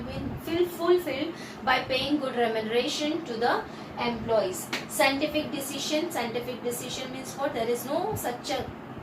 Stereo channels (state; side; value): identical; both; correlation 1.00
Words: be fulfilled by paying good remuneration to the employees. Scientific decision. Scientific decision means what? There is no such a